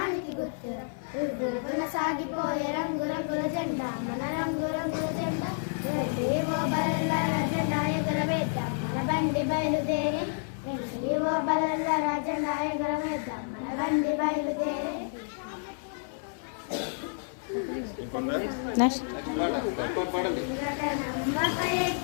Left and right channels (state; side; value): silent; right; 56 dB below the other